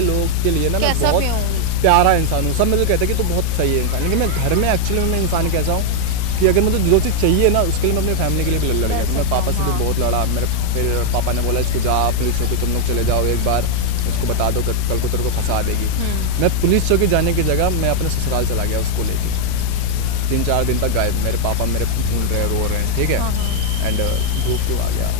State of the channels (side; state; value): both; different; correlation 0.00